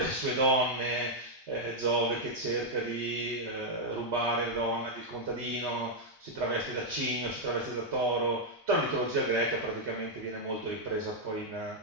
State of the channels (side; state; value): both; normal; correlation -0.02